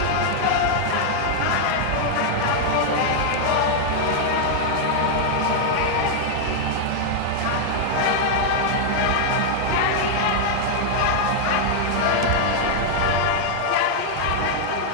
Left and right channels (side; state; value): both; different; correlation -0.01